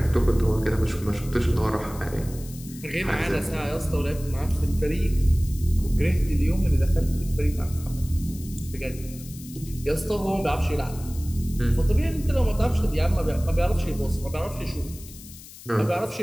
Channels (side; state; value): left; noise; hiss, 17 dB below the sound